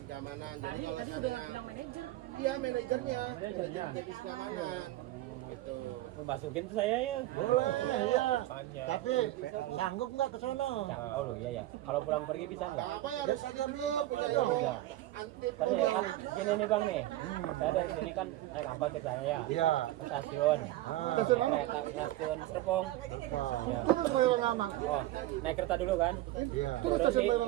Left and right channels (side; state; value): left; quieter; 15.7 dB